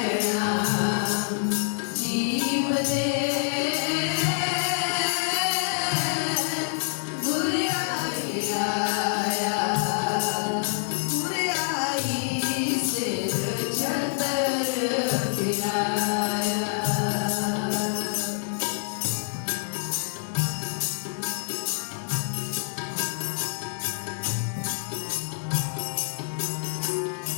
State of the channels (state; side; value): silent; right; digital silence